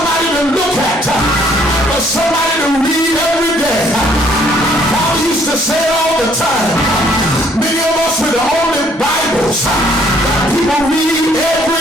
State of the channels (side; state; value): both; normal; correlation 0.63